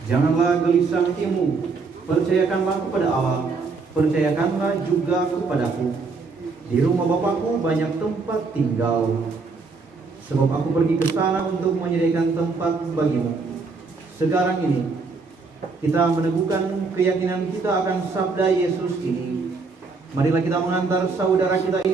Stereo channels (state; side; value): quieter; left; 4.4 dB